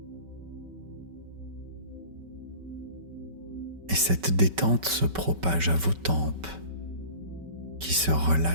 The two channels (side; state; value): left; late; 5.2 ms